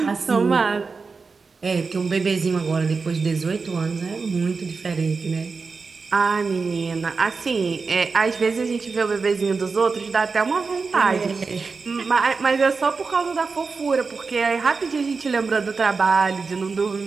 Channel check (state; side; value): quieter; left; 4.6 dB